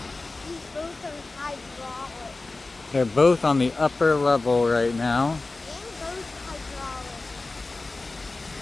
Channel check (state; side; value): quieter; right; 3.4 dB